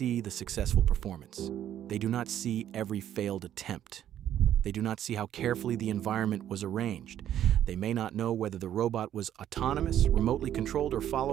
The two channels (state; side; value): quieter; left; 11.0 dB